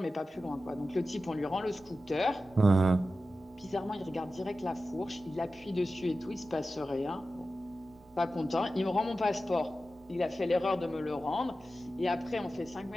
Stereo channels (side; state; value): both; normal; correlation 0.93